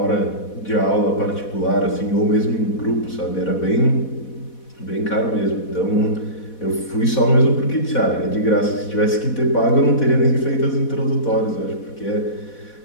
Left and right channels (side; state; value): right; late; 4.1 ms